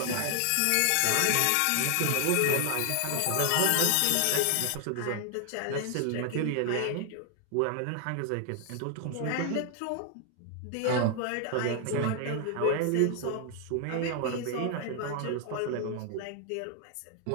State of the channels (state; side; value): different; both; correlation 0.00